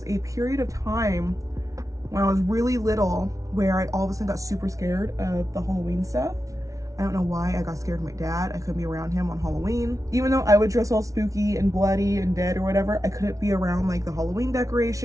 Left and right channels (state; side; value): late; left; 0.16 ms